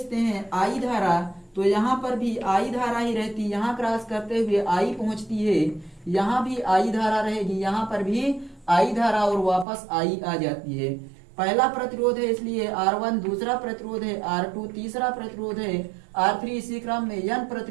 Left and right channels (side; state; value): left; drops out; at 9.7 s